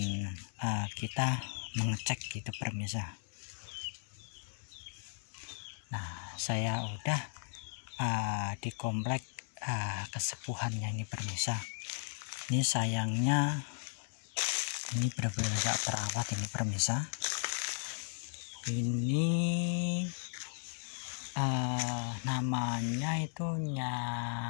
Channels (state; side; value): silent; right; digital silence